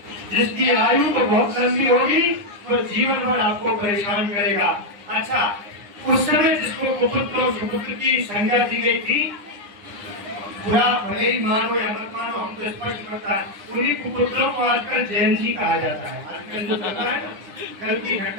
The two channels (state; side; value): late; left; 9.8 ms